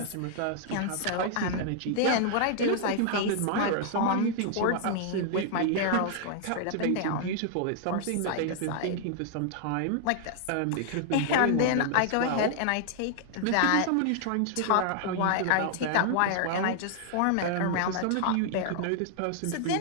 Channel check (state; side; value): different; both; correlation 0.00